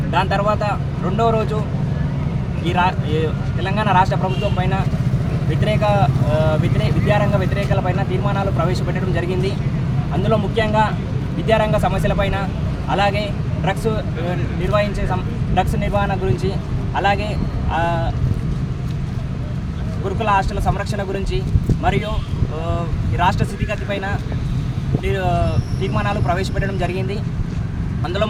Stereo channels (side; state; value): both; identical; correlation 1.00